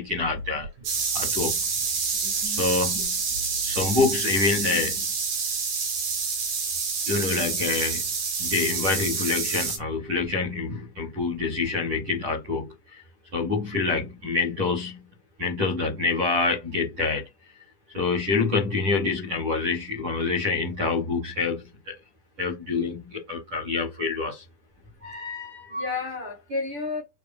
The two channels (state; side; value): late; left; 10 ms